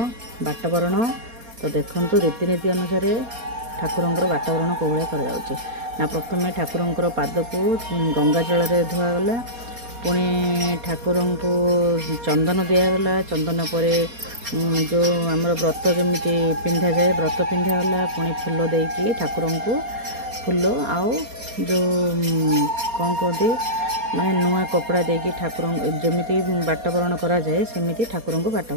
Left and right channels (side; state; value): left; late; 4.3 ms